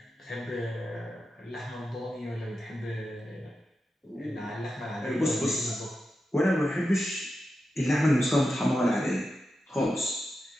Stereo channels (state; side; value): normal; both; correlation 0.90